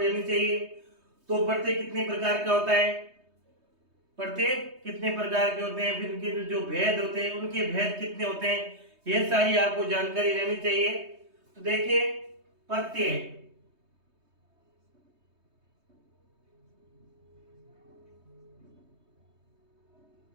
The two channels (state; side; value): late; left; 3.2 ms